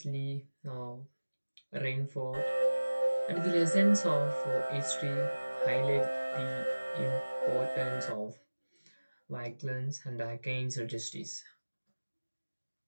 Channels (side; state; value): both; inverted; correlation -1.00